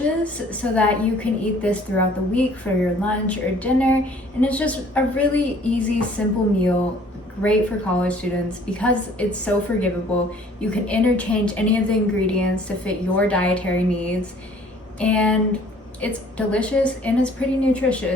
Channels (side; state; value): both; normal; correlation 0.55